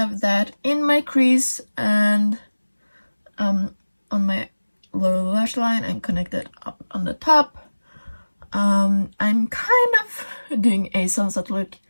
that in my crease and on my lower lash line and connected up on the top. I'm kind of doing a sunset look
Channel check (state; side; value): inverted; both; correlation -1.00